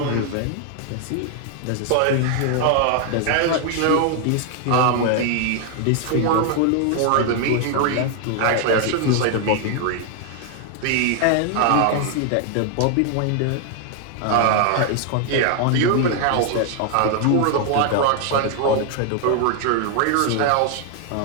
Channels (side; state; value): both; different; correlation 0.00